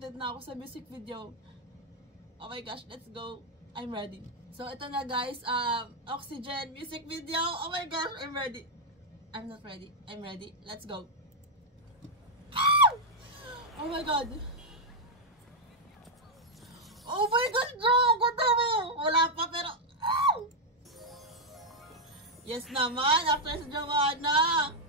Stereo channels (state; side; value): normal; both; correlation -0.01